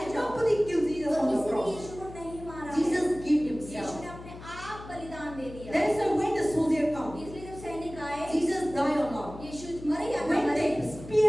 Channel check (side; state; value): left; noise; hum, 15 dB below the sound